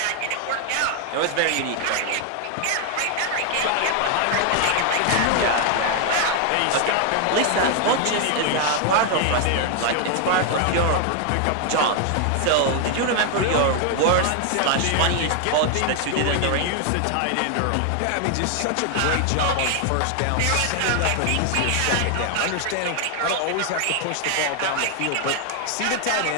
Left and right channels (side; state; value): both; different; correlation 0.00